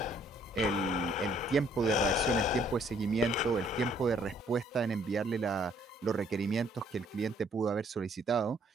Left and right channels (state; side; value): normal; both; correlation 0.63